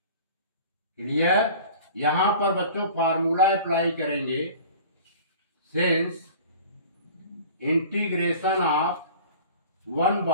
क्लियर? यहां पर बच्चों फार्मूला अप्लाई करेंगे, since integration of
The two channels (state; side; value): inverted; both; correlation -0.43